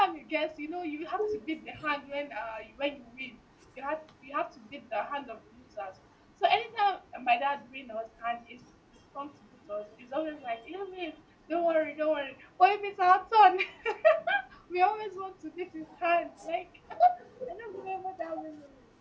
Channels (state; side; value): identical; both; correlation 1.00